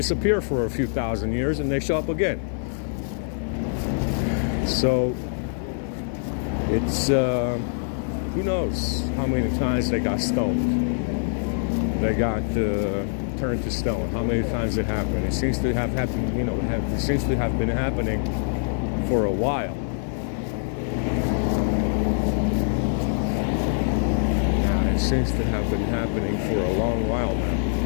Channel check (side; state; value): right; silent; 61 dB below the other